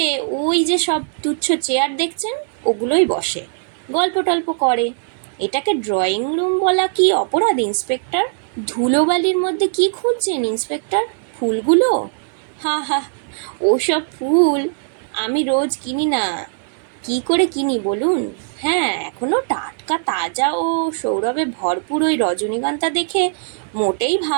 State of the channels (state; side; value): silent; left; 62 dB below the other